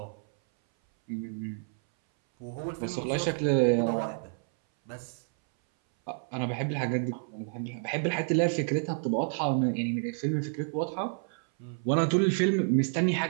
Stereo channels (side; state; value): left; silent; 58 dB below the other